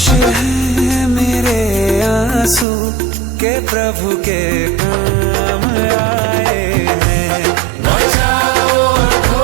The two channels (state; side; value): drops out; left; at 2.7 s